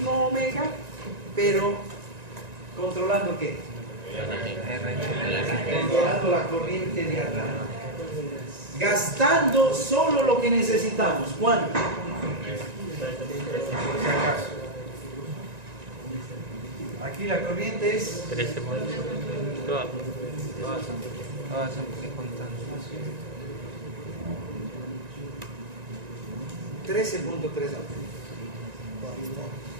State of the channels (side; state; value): left; late; 1.9 ms